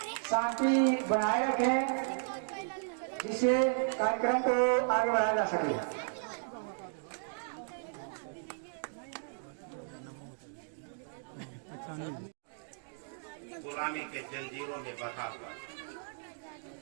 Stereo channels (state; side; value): silent; left; digital silence